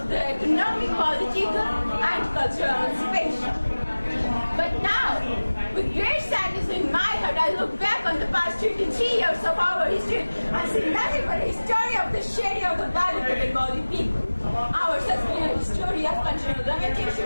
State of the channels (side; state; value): both; inverted; correlation -1.00